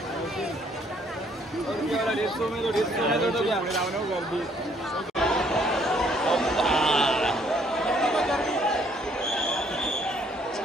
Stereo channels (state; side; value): normal; both; correlation 0.65